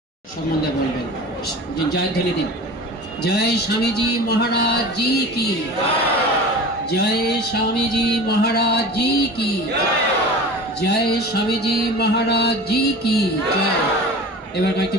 সম্বন্ধে বলবেন, জয়ধ্বনি দিন। জয় স্বামীজি মহারাজ জি কি, জয় স্বামীজি মহারাজ জি কি, জয় স্বামীজি মহারাজ জি কি জয়। এবার কয়েকটি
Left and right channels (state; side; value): normal; both; correlation 0.36